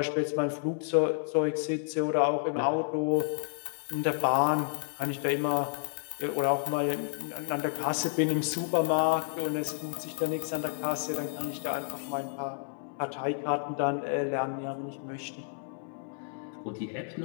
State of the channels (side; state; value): right; silent; 57 dB below the other